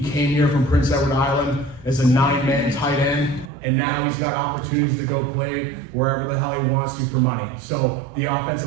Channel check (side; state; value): left; drops out; at 3.5 s